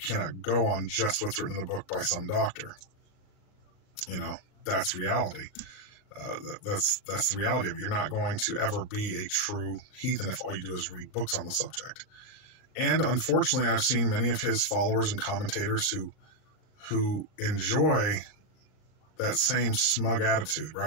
go on just what's written in a book by some doctor. That's reality. That's the reality of it. You're not going to ever be a true heathen if all you do is read books on the subject. And unfortunately, I've seen many of his followers and commentators who enjoy that same smug attitude,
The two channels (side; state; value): right; late; 38 ms